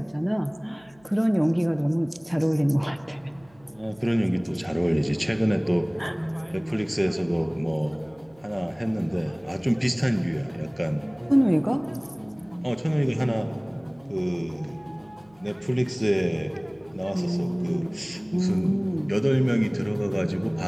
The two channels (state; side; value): noise; right; hum, 30 dB below the sound